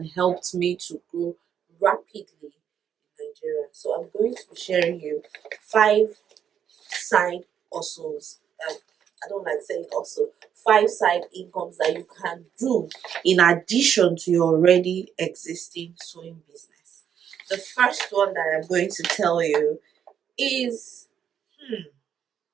helped me to grow rapidly in Nigeria. So I'm going to be sharing you five side hustles. I don't like saying also five side incomes that you can do in addition to your already existing sewing business. The first one that I'm going to tell you is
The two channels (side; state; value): left; quieter; 8.7 dB